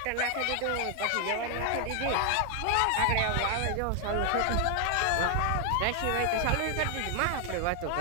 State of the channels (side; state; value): both; different; correlation 0.00